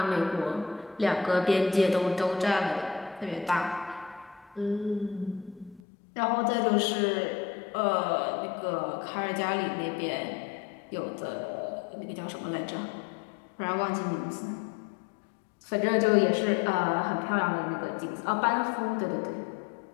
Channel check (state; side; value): drops out; right; at 5.8 s